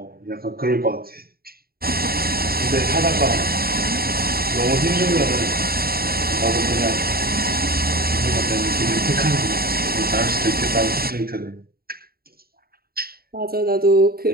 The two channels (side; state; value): left; late; 0.44 ms